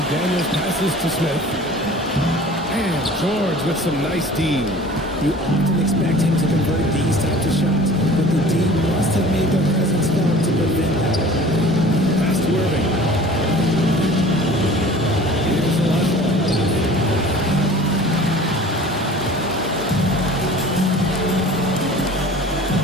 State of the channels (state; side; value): normal; both; correlation 0.44